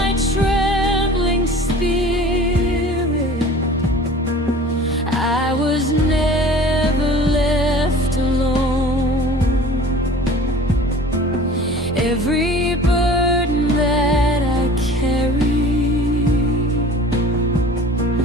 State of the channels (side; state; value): both; normal; correlation 0.43